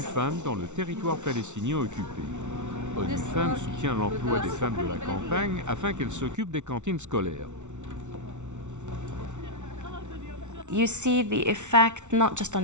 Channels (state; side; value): late; left; 0.84 ms